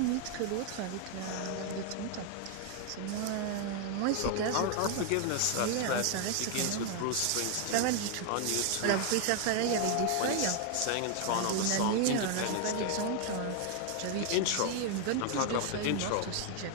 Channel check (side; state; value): both; different; correlation 0.00